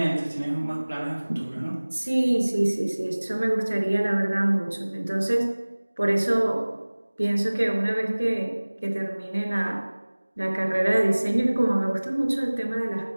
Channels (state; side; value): inverted; both; correlation -1.00